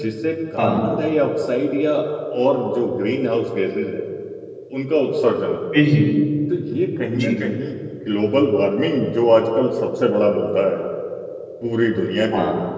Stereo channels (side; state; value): both; identical; correlation 1.00